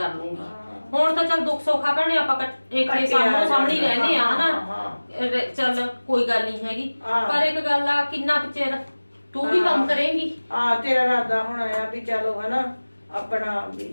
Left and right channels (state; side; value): inverted; both; correlation -1.00